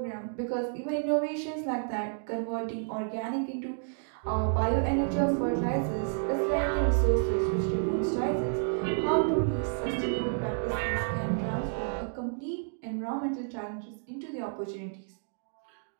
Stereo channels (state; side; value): silent; left; digital silence